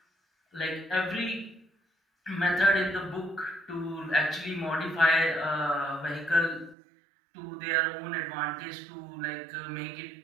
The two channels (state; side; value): drops out; left; at 6.8 s